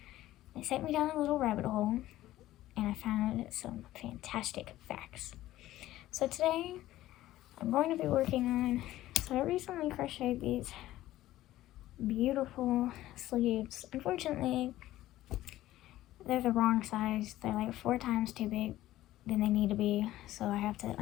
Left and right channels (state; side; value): quieter; right; 15.0 dB